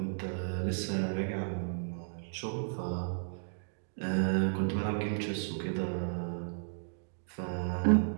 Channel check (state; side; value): silent; left; digital silence